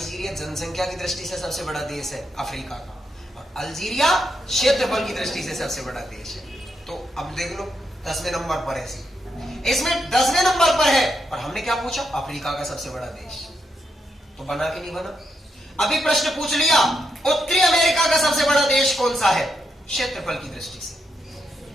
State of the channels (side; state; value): both; normal; correlation 0.82